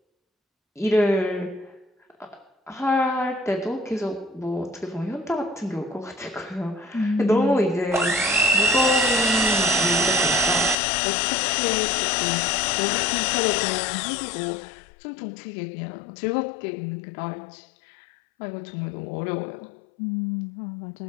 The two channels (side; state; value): right; drops out; at 10.8 s